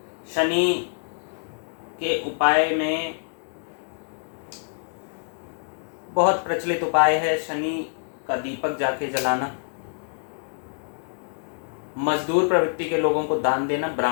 शनि के उपाय में बहुत प्रचलित उपाय है शनि का दीपक जाके जलाना, मजदूर प्रवृत्ति के लोगों को दान देना,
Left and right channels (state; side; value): silent; right; digital silence